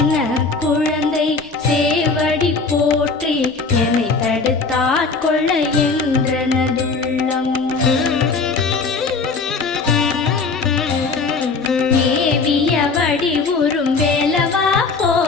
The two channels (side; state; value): right; quieter; 4.3 dB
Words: குழந்தை சேவடி போற்றி என்னை தடுத்தாட்கொள்ள என்றனதுள்ளம் மேவிய வடிவுறும் வேலவா